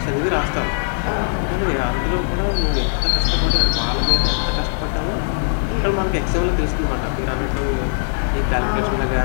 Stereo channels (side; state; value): right; silent; digital silence